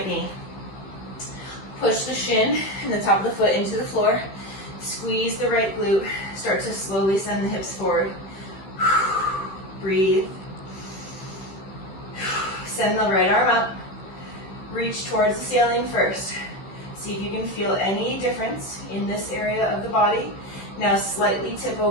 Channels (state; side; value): late; right; 15 ms